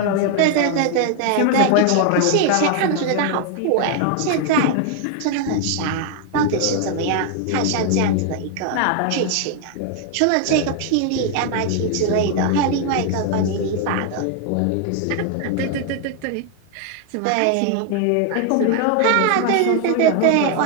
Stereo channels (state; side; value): different; both; correlation 0.00